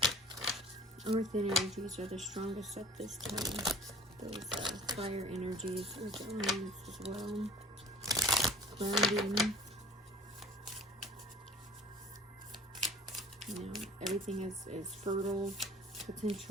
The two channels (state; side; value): normal; both; correlation 0.48